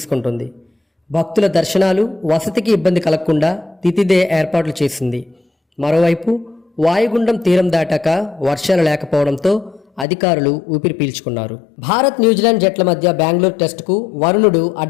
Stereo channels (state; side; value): drops out; right; at 10.1 s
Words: భక్తుల దర్శనాలు, వసతికి ఇబ్బంది కలగకుండా తితిదే ఏర్పాట్లు చేసింది. మరోవైపు వాయుగుండం తీరం దాటాక వర్షాలు లేకపోవడంతో అధికారులు ఊపిరి పీల్చుకున్నారు. భారత్ న్యూజిలాండ్ జట్ల మధ్య బెంగళూరు టెస్టుకు వరుణుడు